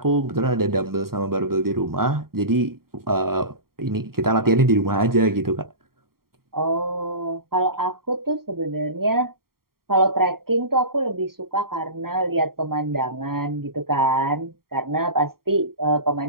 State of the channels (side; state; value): left; late; 0.93 ms